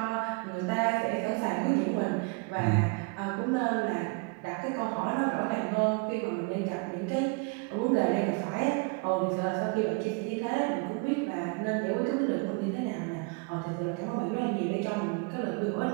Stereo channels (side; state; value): left; quieter; 30.6 dB